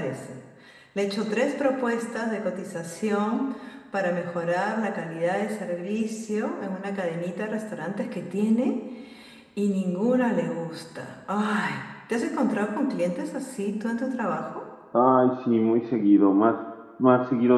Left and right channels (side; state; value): both; identical; correlation 1.00